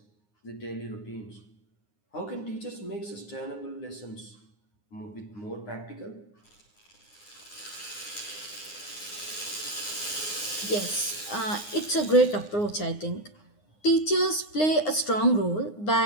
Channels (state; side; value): late; right; 9.7 ms